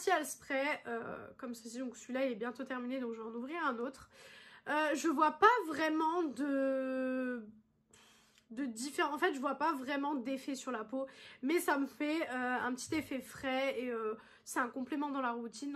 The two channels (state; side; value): identical; both; correlation 1.00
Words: spray, comme ceci. Donc, celui-là, il est bientôt terminé, donc je vais en ouvrir un autre. Je vois pas vraiment de différents. En fait, je vois pas vraiment d'effet sur la peau, mais ça me fait un petit effet frais et c'est un complément dans la routine,